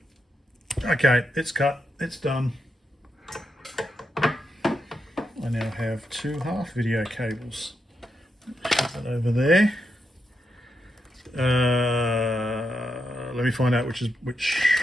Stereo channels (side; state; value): both; normal; correlation 0.84